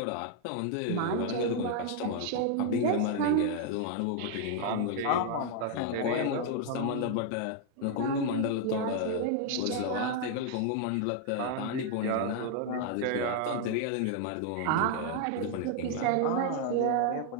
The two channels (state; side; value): different; both; correlation 0.00